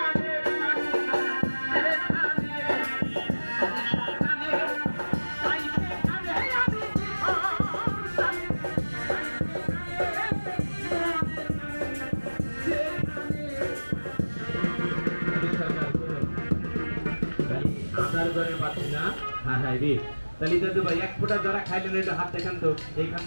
হ্যাঁ রে, তাহলে দাদু ভাই এক ফোঁটা যারা খাইলেন এটা হাত দেখান তো, এইখান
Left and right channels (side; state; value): both; inverted; correlation -1.00